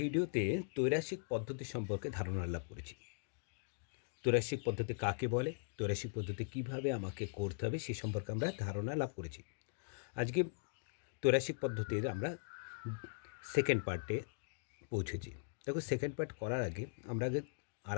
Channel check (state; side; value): silent; right; digital silence